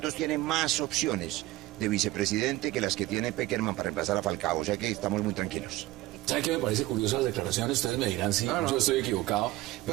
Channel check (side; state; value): left; quieter; 17.6 dB